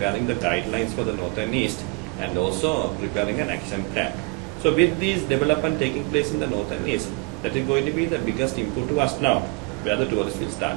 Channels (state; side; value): quieter; left; 29.6 dB